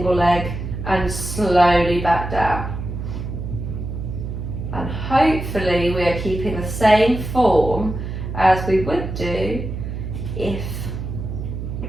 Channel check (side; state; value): right; noise; hum, 6 dB below the sound